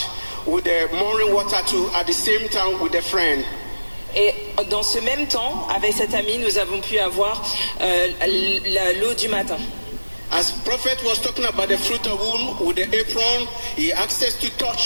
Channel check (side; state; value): both; inverted; correlation -1.00